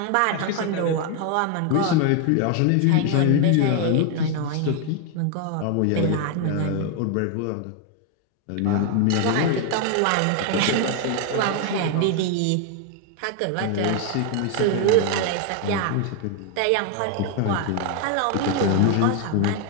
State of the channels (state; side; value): different; both; correlation 0.01